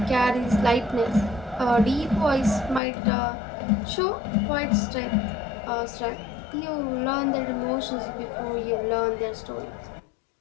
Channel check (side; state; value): right; drops out; at 2.8 s